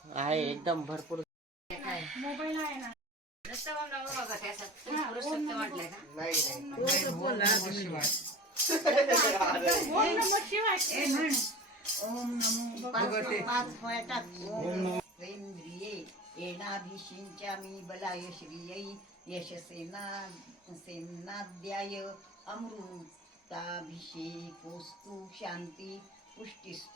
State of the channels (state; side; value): normal; both; correlation 0.36